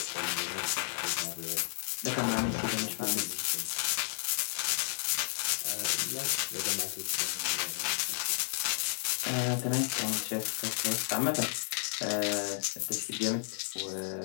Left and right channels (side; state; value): right; silent; digital silence